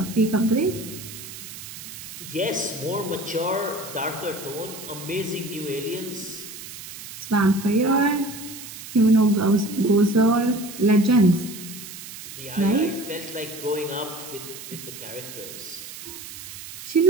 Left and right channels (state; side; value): noise; right; hiss, 13 dB below the sound